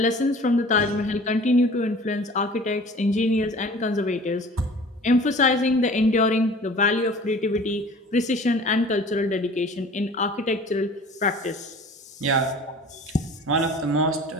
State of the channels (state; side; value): normal; both; correlation 0.44